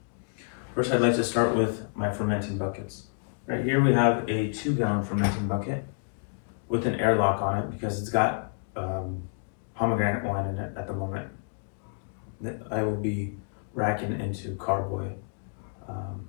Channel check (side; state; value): right; silent; digital silence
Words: First, I'd like to start with my fermenting buckets. Right here we have a 2-gallon fermenting bucket with an airlock on it because it's got pomegranate wine in it at the moment that I will be racking into carboy